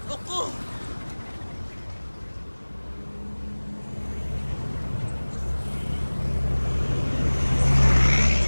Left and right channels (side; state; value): both; inverted; correlation -1.00